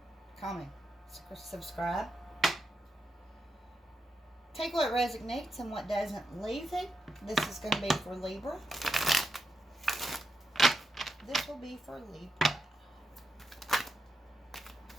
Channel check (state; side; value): normal; both; correlation 0.86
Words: comment, subscribe. Take what resonates and what doesn't, leave it. This is going to be for Libra. This will be for Libra.